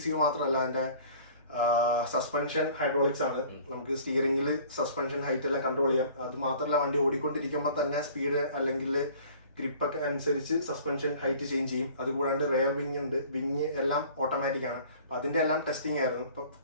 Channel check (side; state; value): both; inverted; correlation -0.49